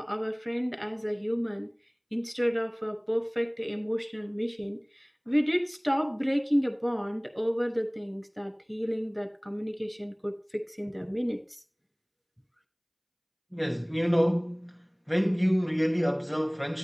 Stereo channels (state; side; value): identical; both; correlation 1.00